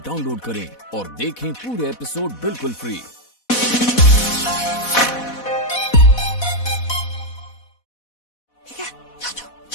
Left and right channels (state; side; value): late; right; 4.1 ms